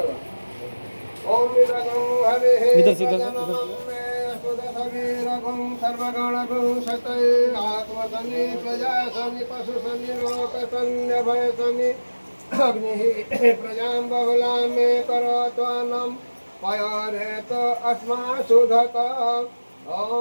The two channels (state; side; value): inverted; both; correlation -1.00